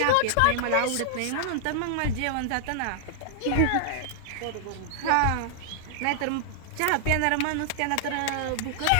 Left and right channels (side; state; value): both; different; correlation -0.01